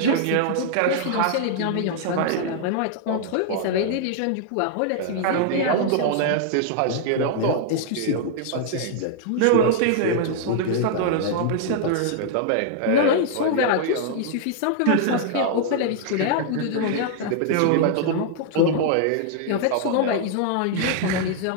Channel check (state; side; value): different; both; correlation 0.00